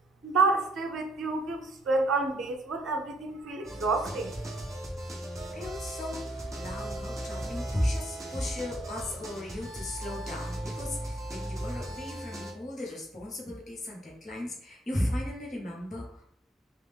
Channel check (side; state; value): both; normal; correlation 0.69